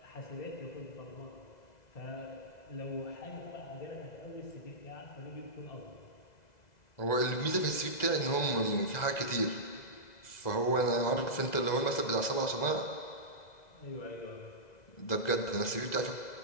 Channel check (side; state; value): right; late; 2.0 ms